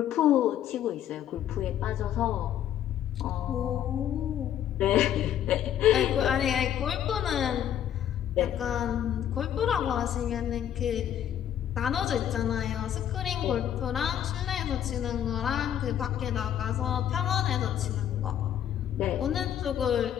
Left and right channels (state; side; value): quieter; right; 10.4 dB